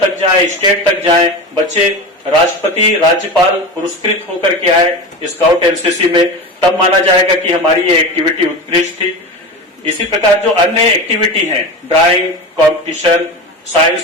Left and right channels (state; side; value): normal; both; correlation 0.26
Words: जाएं, स्टेट तक जाएं, बच्चे राष्ट्रपति, राज्यपाल पुरस्कृत होकर के आए स्काउट एनसीसी में, तब माना जाएगा कि हमारी ये एक्टिविटी उत्कृष्ट थी। इसी प्रकार जो अन्य एक्टिविटी हैं, ड्राइंग कॉम्पिटिशन,